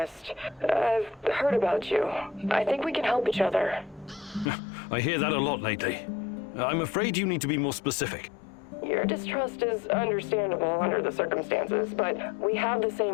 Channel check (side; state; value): right; drops out; at 4.5 s